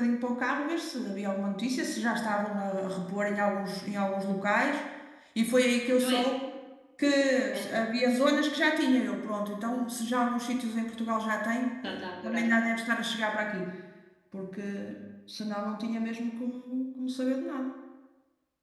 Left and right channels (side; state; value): both; identical; correlation 1.00